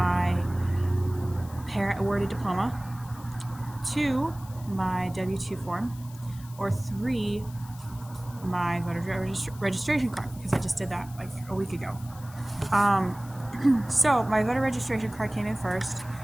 parent awarded diploma, 2, my W-2 form, or 3, my voter registration card, because I just did that like a week ago. So my voter registration card came in first.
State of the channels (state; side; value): noise; left; hiss, 21 dB below the sound